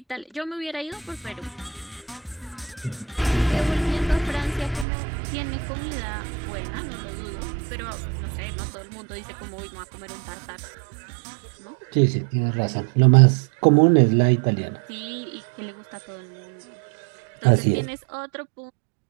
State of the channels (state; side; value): drops out; left; at 4.9 s